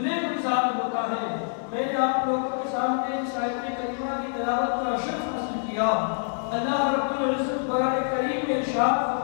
گلزار ہوتا ہے۔ میں نے آپ لوگوں کے سامنے اس آیت کریمہ کی تلاوت کا شرف حاصل کیا۔ اللہ رب العزت قرآن کریم میں ارشاد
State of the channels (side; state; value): right; silent; digital silence